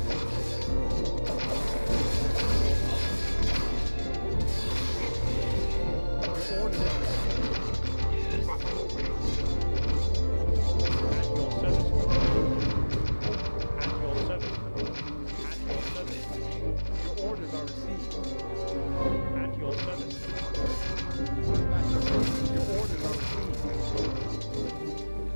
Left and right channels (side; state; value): both; inverted; correlation -1.00